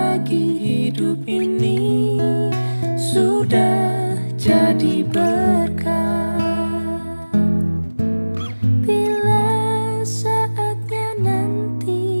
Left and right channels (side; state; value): both; inverted; correlation -1.00